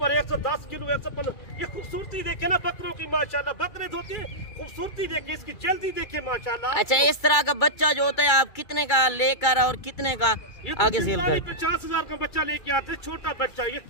110 کلو، 115۔ یہ خوبصورتی دیکھیں نا بکروں کی، ماشاءاللہ بکرے دھوتے ہیں، خوبصورتی دیکھیں، اس کی جلدی دیکھیں ماشاءاللہ۔ اچھا اس طرح کا بچہ جو ہوتا ہے آپ کتنے کا لے کر اور کتنے کا آگے سیل کر؟ 50,000 کا بچہ لے کے آتے ہیں، چھوٹا بچہ، یہ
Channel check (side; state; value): right; late; 2.3 ms